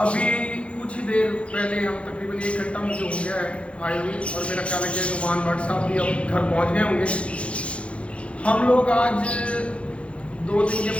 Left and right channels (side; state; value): right; late; 0.061 ms